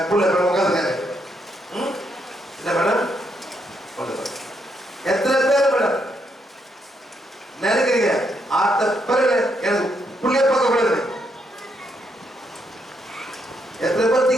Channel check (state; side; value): normal; both; correlation 0.77